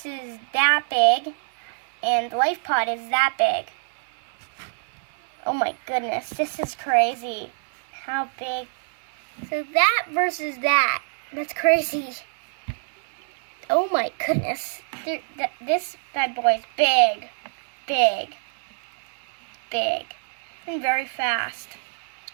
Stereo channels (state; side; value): silent; left; 61 dB below the other